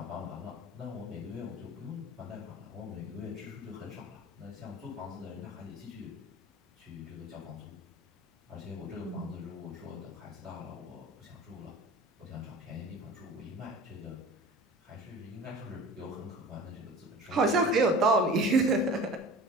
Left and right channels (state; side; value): normal; both; correlation 0.40